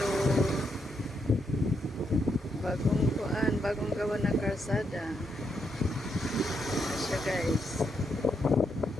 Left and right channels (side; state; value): both; normal; correlation 0.79